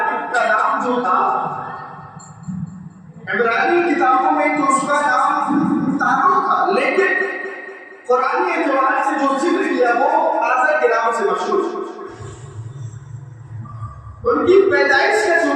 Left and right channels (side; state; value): both; identical; correlation 1.00